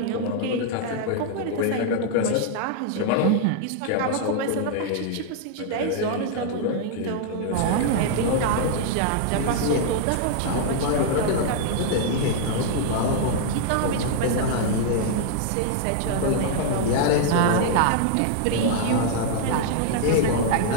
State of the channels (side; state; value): both; different; correlation -0.01